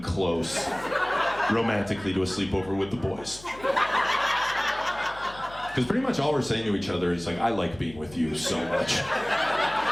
close romantically to a sleepover with the boys. Because pretty much all we're saying to each other is like, I like being with you so much.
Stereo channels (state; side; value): noise; left; hum, 20 dB below the sound